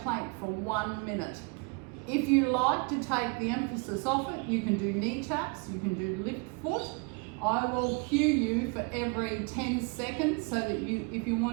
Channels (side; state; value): left; quieter; 32.3 dB